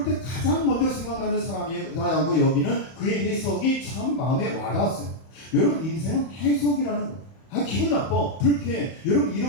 때 가장 먼저 생각나는 사람이라고 여기는 그의 해석이 참 마음에 와닿았어요. 여러분 인생은 해석이라는 거. 기분 나빠, 불쾌해. 여러분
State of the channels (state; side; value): late; right; 31 ms